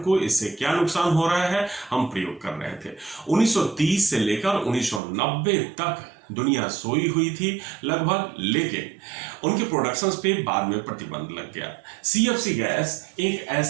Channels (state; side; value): drops out; left; at 5.0 s